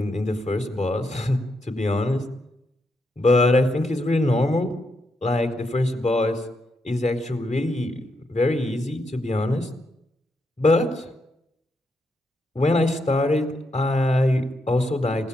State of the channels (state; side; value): normal; both; correlation 0.81